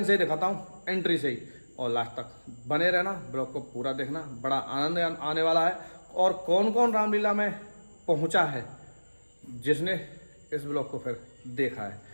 से ही दिखाता हूँ, एंट्री से ही, और लास्ट तक बने रहना, ब्लॉग को पूरा देखना, बड़ा आनंद आने वाला है। और कौन कौन रामलीला में पहुंचा है जिसने इस ब्लॉग को फिर देखा है,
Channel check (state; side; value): inverted; both; correlation -1.00